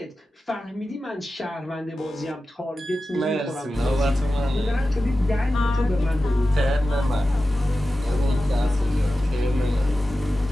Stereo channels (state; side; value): normal; both; correlation 0.93